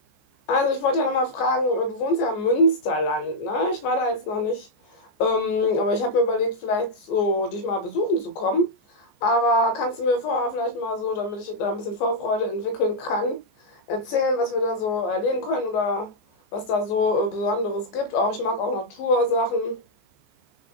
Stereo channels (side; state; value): right; late; 14 ms